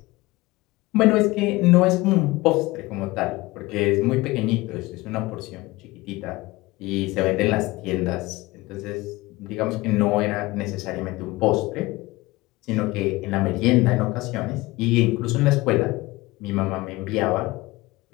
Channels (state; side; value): quieter; right; 20.5 dB